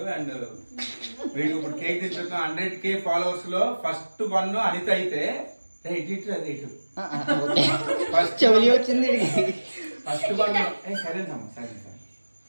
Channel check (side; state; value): both; inverted; correlation -1.00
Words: అండ్ వీడికి ఇప్పుడు కేక్ తెచ్చుకున్నాం. 100K ఫాలోవర్స్ లో ఫస్ట్ 1 అనిత అయితే ఫస్ట్ వచ్చింది. ఫస్ట్ 1 సైలెంట్ అమ్మా, సైలెంట్